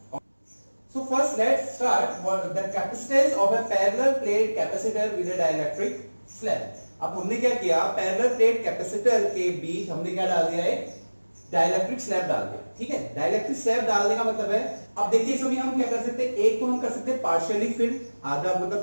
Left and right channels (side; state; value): both; inverted; correlation -1.00